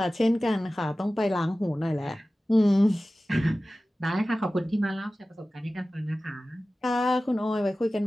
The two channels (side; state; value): both; normal; correlation 0.96